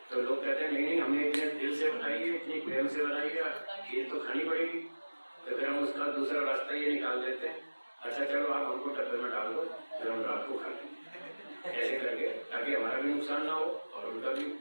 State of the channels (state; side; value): inverted; both; correlation -1.00